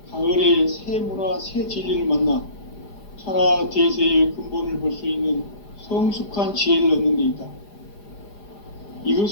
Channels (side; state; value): right; late; 4.9 ms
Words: 가을의 새 문화, 새 진리를 만나 천하 대세의 근본을 볼 수 있는 성숙한 지혜를 얻는 데 있다.